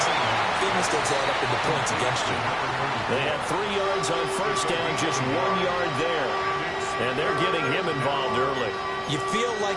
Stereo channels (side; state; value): both; identical; correlation 1.00